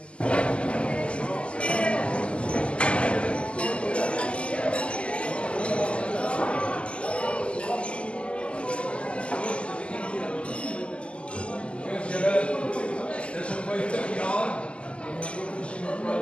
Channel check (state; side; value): late; right; 0.054 ms